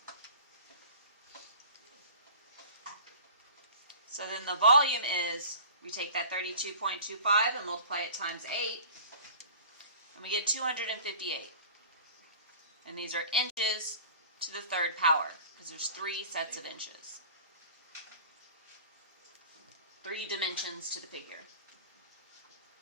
So then the volume is, we take that 32.25 and multiply it times 8, and we get 258. And these are inches to the third power, because there's 3 sets of inches. 3 dimensions to the figure.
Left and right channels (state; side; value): inverted; both; correlation -0.42